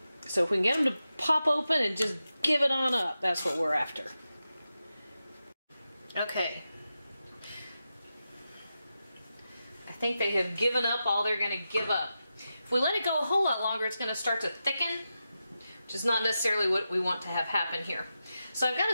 So if we can get them to pop open and just give it on up, that's what we're after. Okay. I think they have given up all they're gonna give up. If we let it go a whole lot longer, it's gonna start to thicken, which is not necessarily what we want to have happen here. So I've got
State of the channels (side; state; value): both; inverted; correlation -0.90